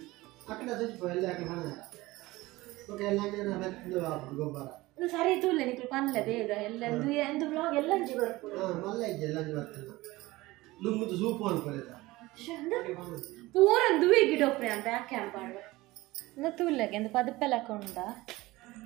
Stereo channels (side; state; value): left; quieter; 19.6 dB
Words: ಸರಿ ತೂಲೆ ನಿಕ್ಲು ಪನ್ಲೆ ಬೇಗ ಎಲ್ಲ ಎಂದು ವ್ಲಾಗ್ ಎಲ್ಲಂಜಿ ಬರ್ಪುಡು ಪೂರ ದುವೆ ಗಿಡ ಒಪ್ಪೆ ಅಂತ ಯಾಕೆ ಅಂಪಾಡು ತೂಲೆಗೆ ಎಂದು ಪದಪ್ಪೆಲ್ಲ ಕೊಂಡ